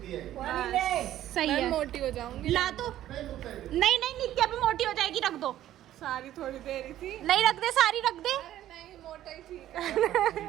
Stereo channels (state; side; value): quieter; left; 12.9 dB